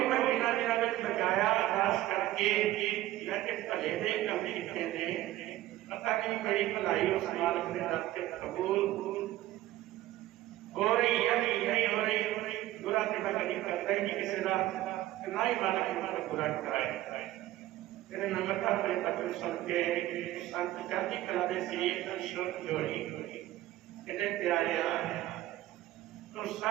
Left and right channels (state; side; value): quieter; left; 15.2 dB